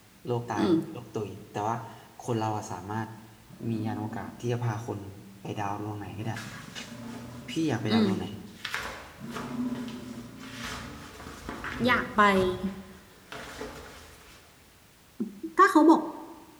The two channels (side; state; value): both; identical; correlation 1.00